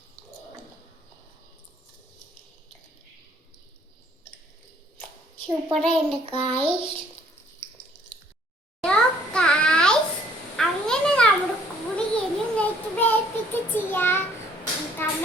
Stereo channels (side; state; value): both; normal; correlation 0.61